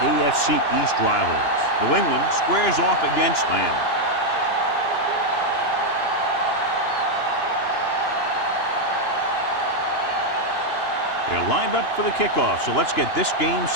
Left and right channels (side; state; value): right; late; 2.9 ms